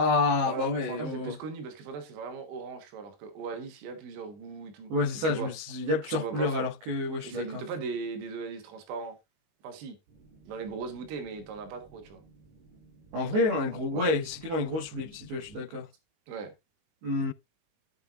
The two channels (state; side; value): late; left; 19 ms